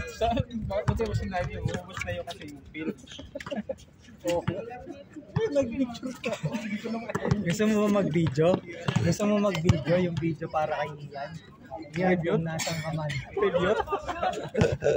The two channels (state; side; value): identical; both; correlation 1.00